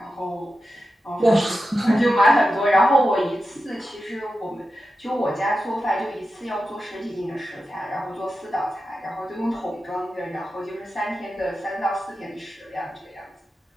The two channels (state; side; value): normal; both; correlation 0.91